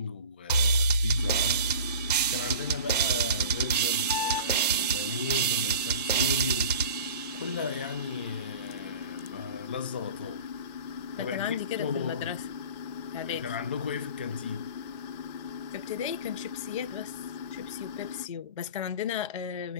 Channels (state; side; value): inverted; both; correlation -0.37